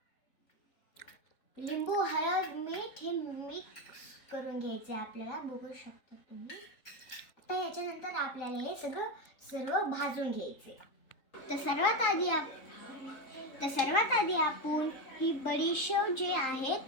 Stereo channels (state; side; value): late; right; 3.6 ms